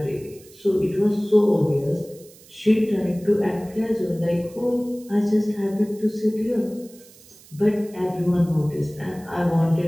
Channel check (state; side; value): noise; right; hiss, 24 dB below the sound